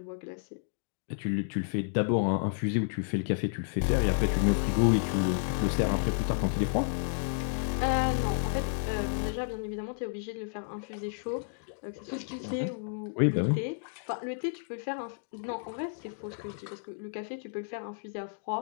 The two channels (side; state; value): right; silent; digital silence